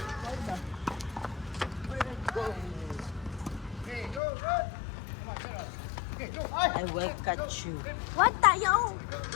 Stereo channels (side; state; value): right; drops out; at 4.2 s